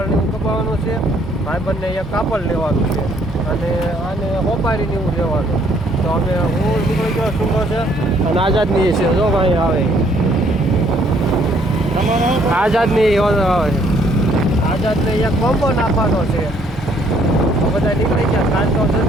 એવું કપાવવાનું છે, ભાઈબંધને એક કાપડ લેવાનું છે અને આને હોપારીને એવું લેવાનું. તો અમે હું નીકળી ગયો શું છે અને આઝાદની છે, જો ભાઈ આવે આઝાદની આવે, આઝાદને એક કોમ્બો નાખવાનો છે. બધા નીકળી ગયા. કાલ તો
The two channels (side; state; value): both; normal; correlation 0.65